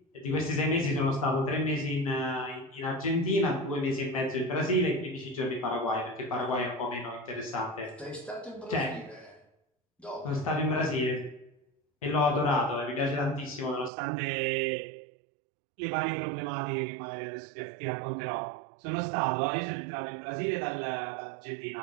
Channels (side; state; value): left; drops out; at 13.9 s